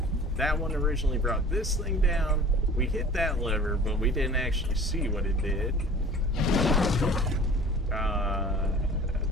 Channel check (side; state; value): both; normal; correlation 0.44